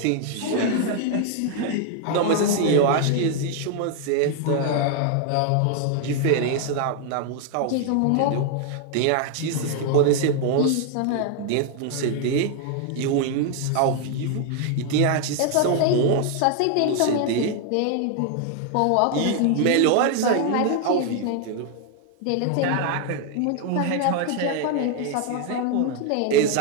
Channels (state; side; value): different; both; correlation 0.00